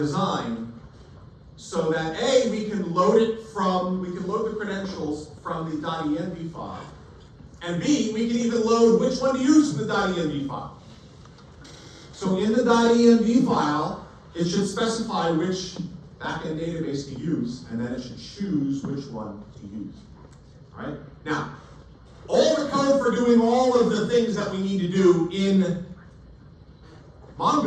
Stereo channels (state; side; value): identical; both; correlation 1.00